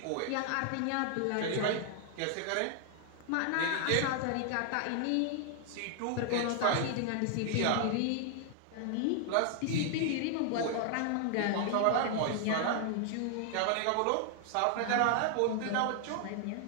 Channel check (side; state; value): both; different; correlation 0.00